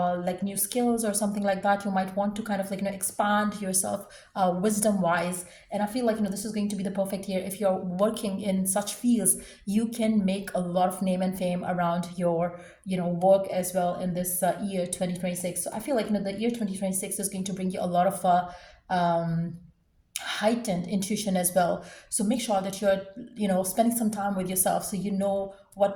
new skills or something like that. You might want to kind of like expand yourself wisdom wise. And I feel like this is going to be the perfect year. If you're working in such fields, you can make a lot of name and fame around your work as well in this year 2026. So I feel like the year 2026 is going to bring you a lot of heightened intuition as well. So make sure that you're spending some time with yourself, so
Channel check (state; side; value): identical; both; correlation 1.00